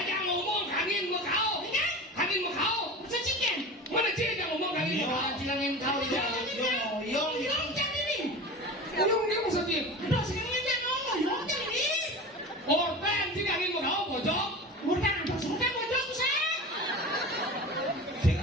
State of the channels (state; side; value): normal; both; correlation 0.32